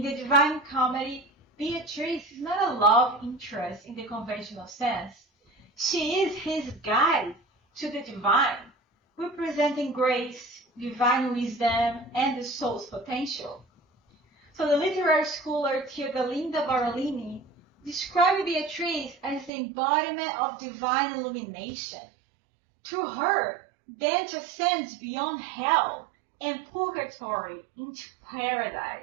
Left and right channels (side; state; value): left; drops out; at 19.5 s